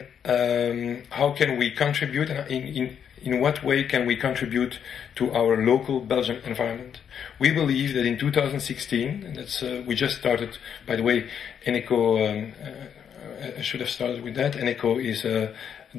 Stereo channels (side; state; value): right; quieter; 8.1 dB